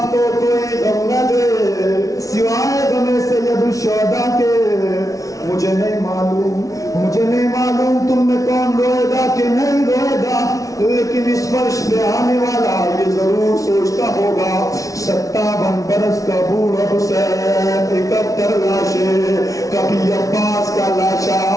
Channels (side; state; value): right; late; 0.17 ms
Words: کو کوئی غم نہ دے سوائے غم سید الشہداء کے. مجھے نہیں معلوم تم میں کون روئے گا کہ نہیں روئے گا، لیکن اس فرش پہ آنے والا یہ ضرور سوچتا ہوگا 57 برس کا بوڑھا حسین 71 لاشیں، کبھی عباس کا لاشا،